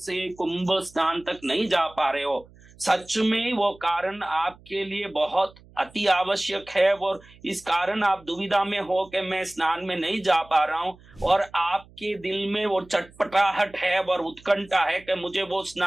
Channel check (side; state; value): right; noise; hum, 25 dB below the sound